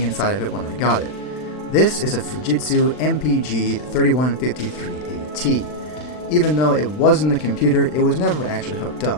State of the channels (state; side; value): late; right; 39 ms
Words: inside of it when I got it. This is a Fujitsu MPG 3153AT. Even though it was in the computer, it was never actually hooked